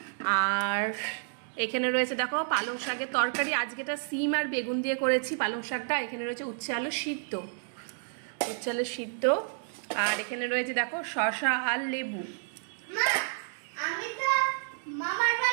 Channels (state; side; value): silent; left; digital silence